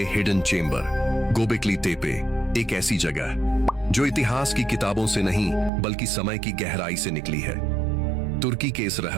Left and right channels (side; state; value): left; drops out; at 5.7 s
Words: hidden chamber. Gobekli तेपे एक ऐसी जगह जो इतिहास की किताबों से नहीं बल्कि समय की गहराई से निकली है। तुर्की के इस